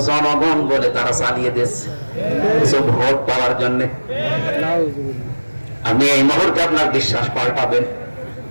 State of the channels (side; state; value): both; inverted; correlation -1.00